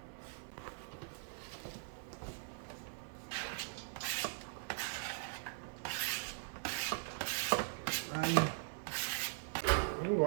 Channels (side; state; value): left; silent; digital silence